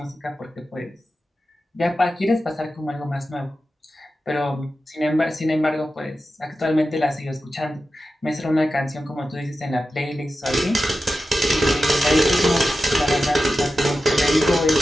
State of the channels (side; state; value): both; normal; correlation 0.92